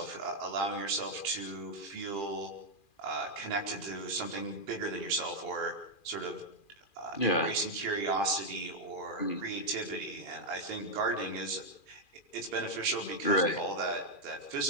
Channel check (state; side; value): late; right; 2.4 ms